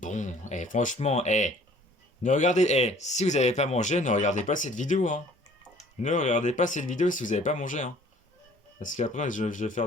Eh, franchement, ne regardez, si vous n'avez pas mangé, ne regardez pas cette vidéo, hein. Ne regardez pas cette vidéo si vous n'avez pas mangé, hein. Parce qu'après, je vais faire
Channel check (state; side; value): normal; both; correlation 0.54